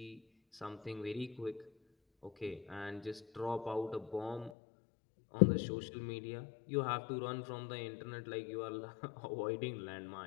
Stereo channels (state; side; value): drops out; right; at 4.5 s